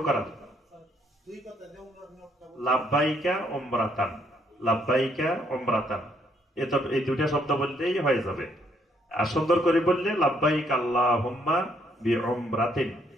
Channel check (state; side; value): normal; both; correlation 0.70